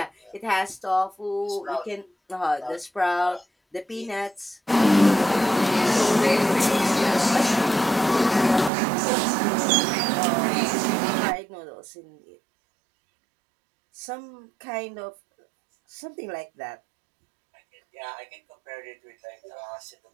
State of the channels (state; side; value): drops out; left; at 8.7 s